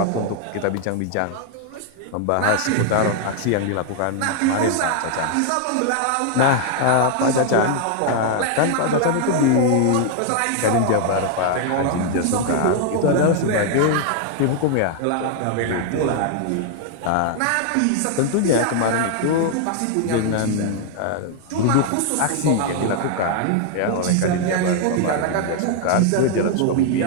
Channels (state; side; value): different; both; correlation 0.00